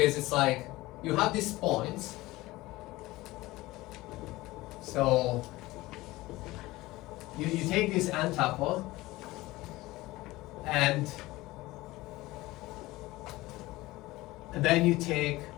it's like you have these points. So you take this n tuple and then you take,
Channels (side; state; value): right; quieter; 19.1 dB